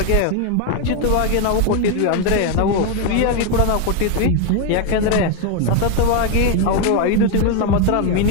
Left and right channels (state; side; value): different; both; correlation 0.01